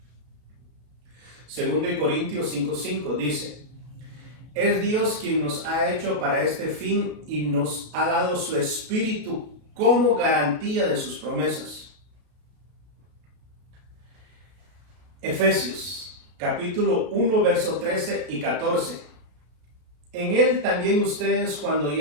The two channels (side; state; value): left; late; 33 ms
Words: 2 Corintios 5:5 dice: Es Dios quien nos ha hecho para este fin y nos ha dado su espíritu como garantía de sus promesas. Efesios capítulo 1, verso 13 y 14. En él también ustedes, cuando